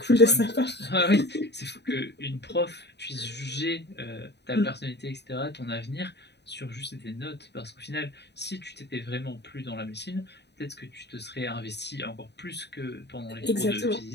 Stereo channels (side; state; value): right; late; 0.50 ms